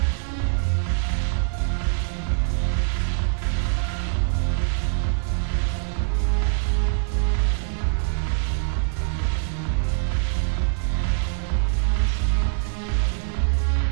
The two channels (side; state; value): left; silent; digital silence